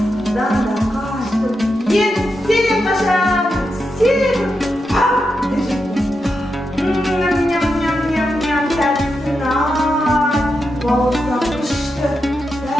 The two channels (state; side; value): normal; both; correlation 0.86